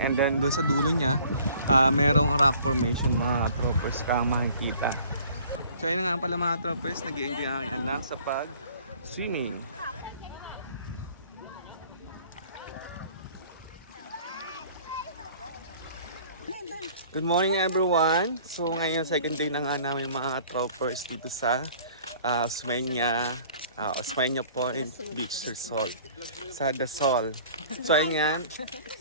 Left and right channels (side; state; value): both; inverted; correlation -0.52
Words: And then doon sa dulo niya, merong rock formation mga troppers kang makikita. So ayun nga pala mga troppers, nag-i-enjoy ang aking anak sa pag-swimming. Good morning everyone! So ngayon second day na nga namin mga troppers dito sa Osmeña Point Beach Resort sa Dazul. So ayan.